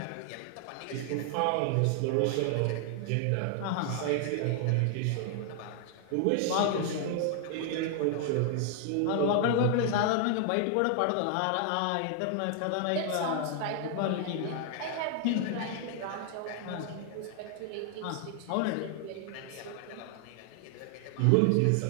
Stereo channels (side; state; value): both; different; correlation 0.00